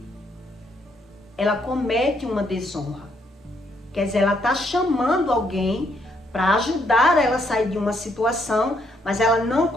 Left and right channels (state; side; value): normal; both; correlation 0.72